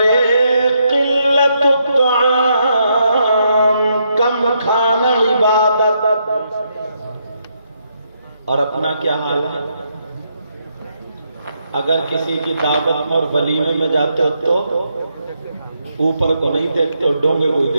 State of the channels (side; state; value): both; inverted; correlation -0.78